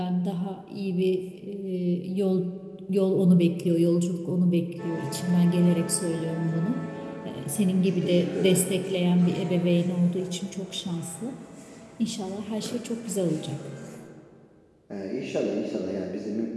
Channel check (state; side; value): identical; both; correlation 1.00